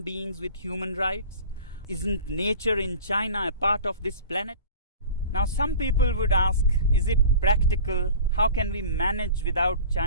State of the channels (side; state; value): both; inverted; correlation -0.39